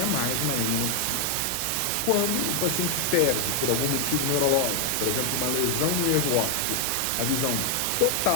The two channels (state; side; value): different; both; correlation 0.00